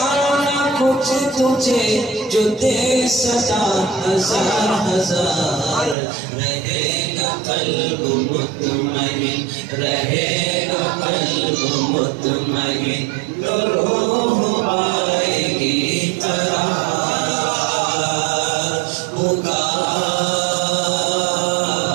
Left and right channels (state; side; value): drops out; left; at 6.0 s